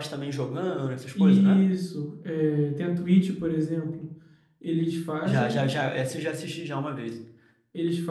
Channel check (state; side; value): identical; both; correlation 1.00